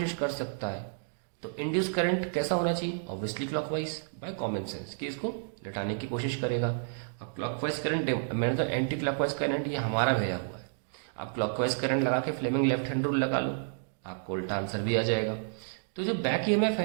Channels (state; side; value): silent; left; digital silence